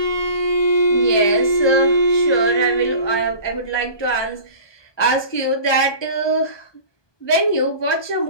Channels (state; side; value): late; right; 1.2 ms